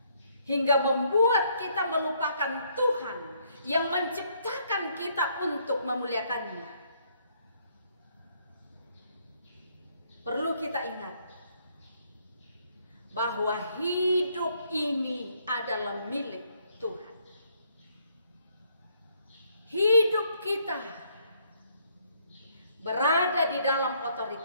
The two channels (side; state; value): both; inverted; correlation -0.69